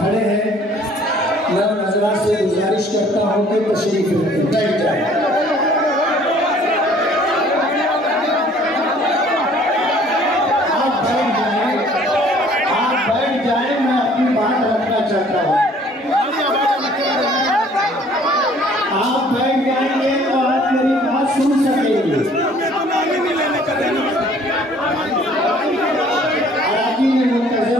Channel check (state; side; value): normal; both; correlation 0.56